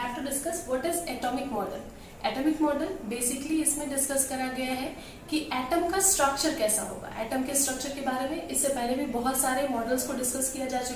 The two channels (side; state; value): both; identical; correlation 1.00